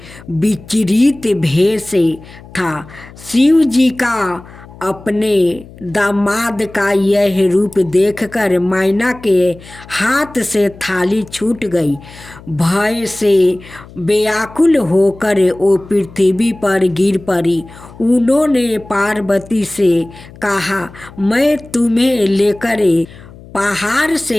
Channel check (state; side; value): noise; left; hum, 20 dB below the sound